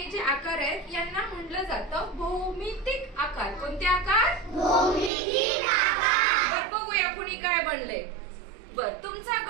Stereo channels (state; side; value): drops out; left; at 5.1 s